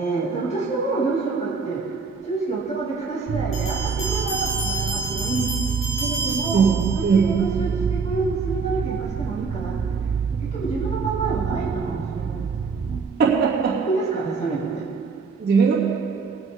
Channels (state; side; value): quieter; left; 4.8 dB